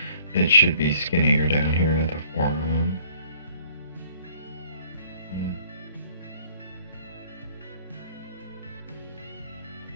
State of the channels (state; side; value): inverted; both; correlation -0.58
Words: It should be skinnier down here at the forearm.